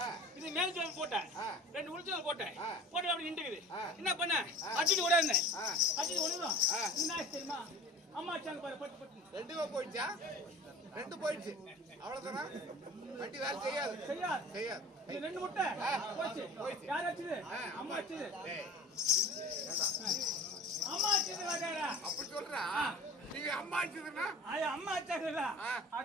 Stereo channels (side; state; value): both; normal; correlation 0.41